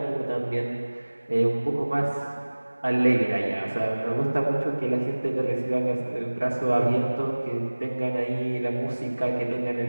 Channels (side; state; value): both; inverted; correlation -1.00